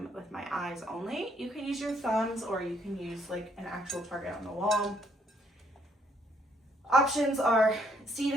with my eyes only. You can use your thumbs or you can use like an actual target on the wall. Options are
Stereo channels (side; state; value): both; normal; correlation 0.68